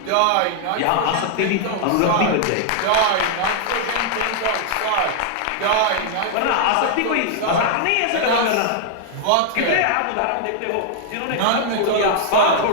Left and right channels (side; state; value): both; different; correlation -0.01